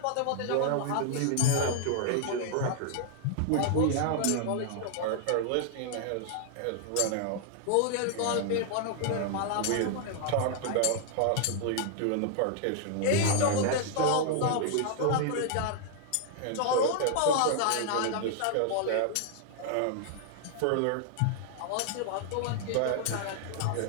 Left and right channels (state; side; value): different; both; correlation 0.00